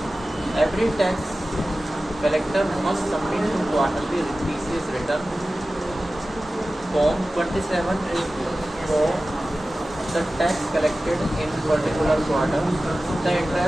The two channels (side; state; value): both; normal; correlation 0.95